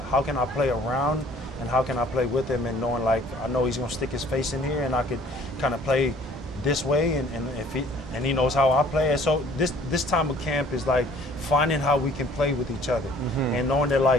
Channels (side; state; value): both; normal; correlation 0.55